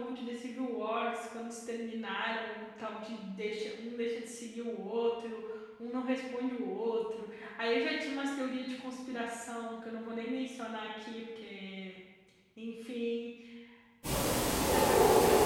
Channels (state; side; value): identical; both; correlation 1.00